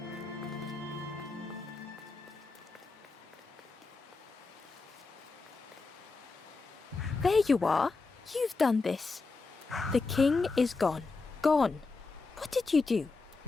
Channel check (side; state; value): right; quieter; 4.0 dB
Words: There you are. You've done this. The king is gone. Gone. What did you do?